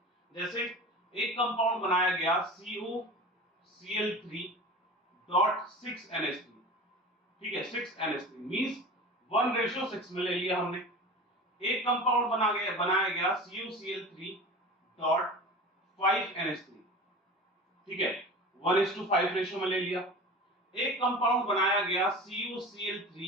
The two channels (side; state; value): both; normal; correlation 0.35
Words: जैसे एक कंपाउंड बनाया गया COCl3.6NH3, ठीक है। 6NH3 मींस 1:6 में ले लिया हमने। एक कंपाउंड बनाया गया CuCl3.5NH3, ठीक है, 1:5 रेशो में ले लिया। एक कंपाउंड बनाया गया